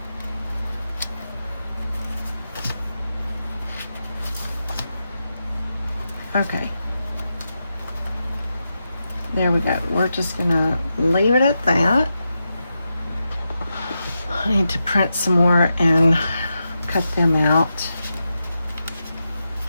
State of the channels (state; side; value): inverted; both; correlation -0.88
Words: Okay. There we go. We're just gonna leave it at that. I need to print some more and cut them out.